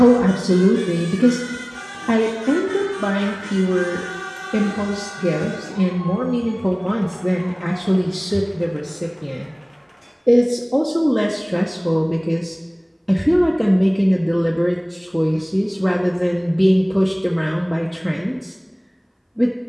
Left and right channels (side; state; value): both; identical; correlation 1.00